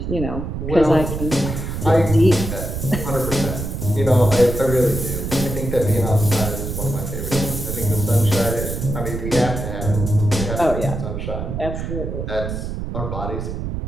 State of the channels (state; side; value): noise; right; rumble, 4 dB below the sound